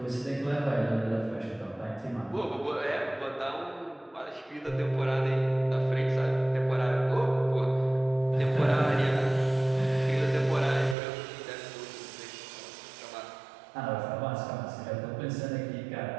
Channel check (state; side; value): drops out; left; at 11.0 s